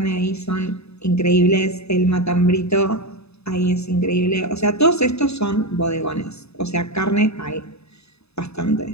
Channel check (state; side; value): late; right; 0.79 ms